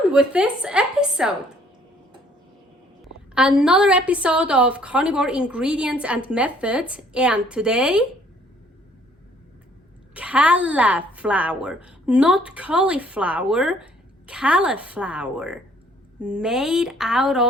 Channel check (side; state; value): both; normal; correlation 0.61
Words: with this episode! Another episode of Carnivore Ingredients and Methods, and today, Calaflower, not cauliflower, Calaflower, made out